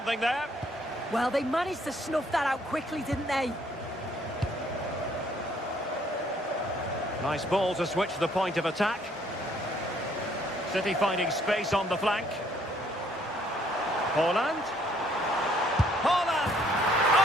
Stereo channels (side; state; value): both; normal; correlation 0.65